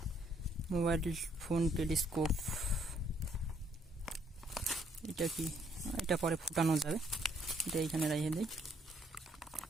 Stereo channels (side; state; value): both; normal; correlation 0.68